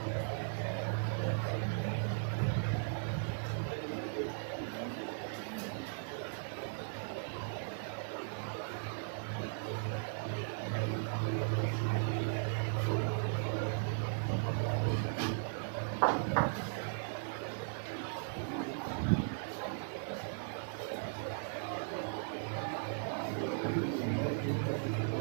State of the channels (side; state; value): left; silent; 53 dB below the other